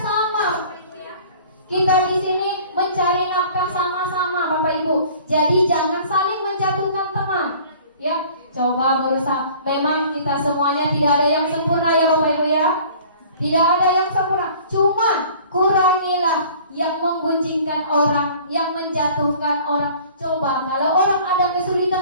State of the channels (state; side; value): inverted; both; correlation -0.49